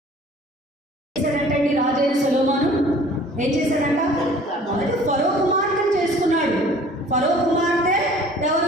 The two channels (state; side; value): normal; both; correlation 0.50